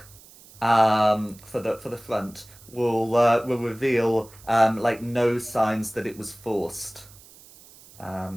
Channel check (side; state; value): right; noise; hiss, 23 dB below the sound